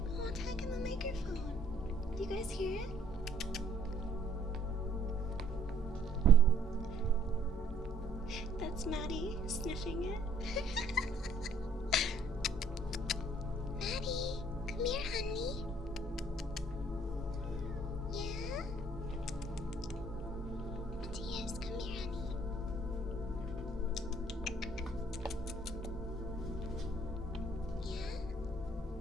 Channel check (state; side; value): normal; both; correlation 0.61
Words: Oh, talk in the microphone. Do you guys hear it? That's Maddie sniffing it. Maddie, come here, honey. Yeah? Matthias, come here, honey. Yeah?